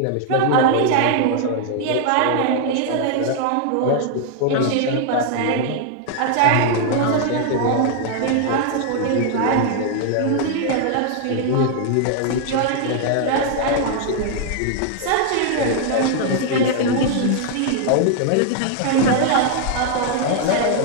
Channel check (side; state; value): both; different; correlation 0.00